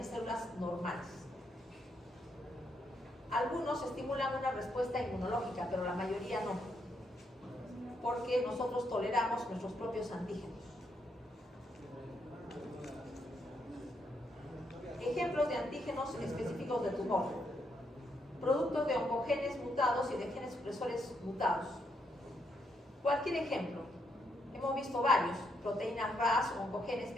células normales. Algunos estimulan una respuesta inmunológica, pero la mayoría no, porque nosotros toleramos nuestros propios antígenos. Ejemplos de antígenos específicos de tumor. Productos de oncogenes mutados y de genes supresores mutados. Cualquier ejemplo. Hemos visto varios. Proteínas RAS, oncogenes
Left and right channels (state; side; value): normal; both; correlation 0.77